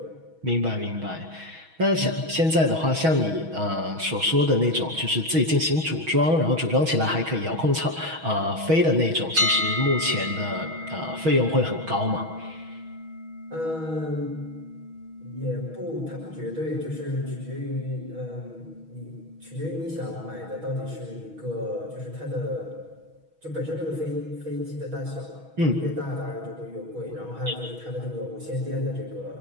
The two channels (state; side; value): late; left; 6.2 ms